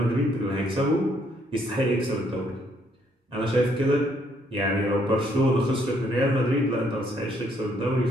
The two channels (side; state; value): both; normal; correlation 0.69